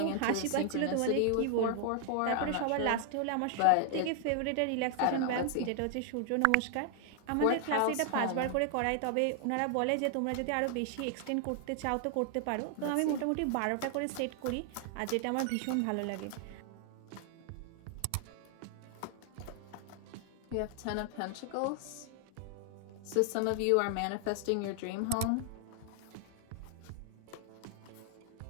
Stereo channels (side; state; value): both; different; correlation 0.00